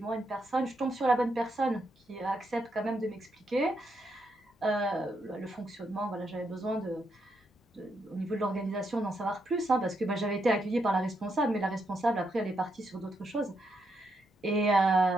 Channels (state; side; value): normal; both; correlation 0.80